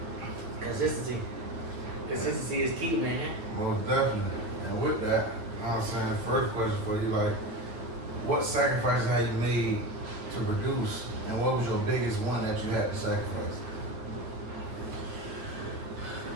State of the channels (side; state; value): left; late; 8.9 ms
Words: consistency. Consistency is key, man. Most definitely. And with that, I'm saying the first question for you, like, what sacrifices have you made to produce, and what was your biggest one that you had to sacrifice?